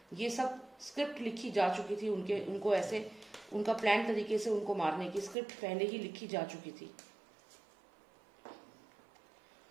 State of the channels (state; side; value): drops out; left; at 5.4 s